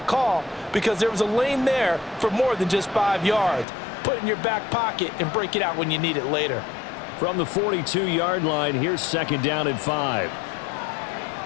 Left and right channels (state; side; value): drops out; right; at 3.7 s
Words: call because there was a lane there for more than just 5 yards. Put it in your back pocket and break it out when you need it later. From the 42-yard line, here's 2nd down and 5.